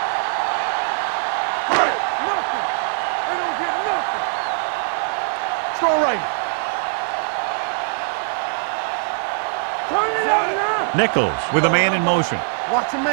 Nothing. They don't get nothing. Strong right. Turn it up now. Nichols with a man in motion. Watch your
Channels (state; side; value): silent; left; 65 dB below the other